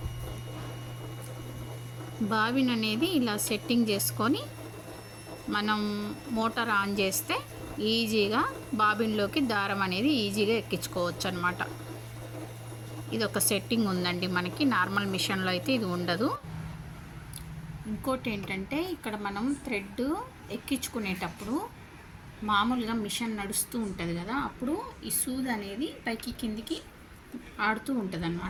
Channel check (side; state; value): both; identical; correlation 1.00